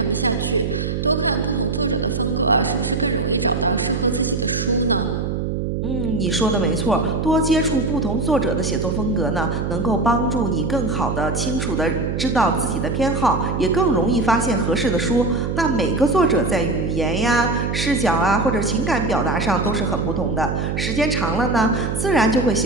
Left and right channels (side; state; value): right; noise; hum, 1 dB below the sound